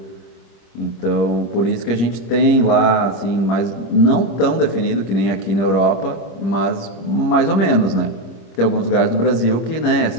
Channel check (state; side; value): late; right; 25 ms